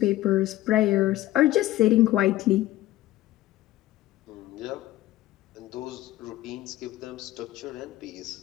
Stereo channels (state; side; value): quieter; right; 15.6 dB